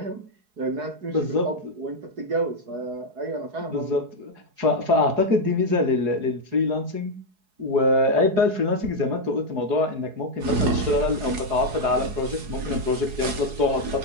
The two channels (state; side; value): late; left; 4.7 ms